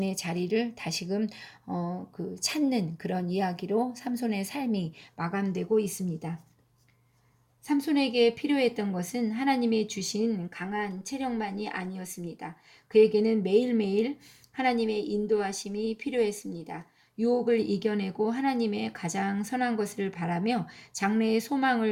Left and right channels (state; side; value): identical; both; correlation 1.00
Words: 자리를 다시금 찾는 그런 이야기로 삼손의 삶이 마감되고 있습니다. 삼손에게 필요했던 것은 하나님이 주신 강한 체력만이 아니었습니다. 그에게는 매일매일 하나님의 인도하심이 필요했습니다. 유혹을 이겨내고 하나님의 가장 선한 것을 바라며 장래의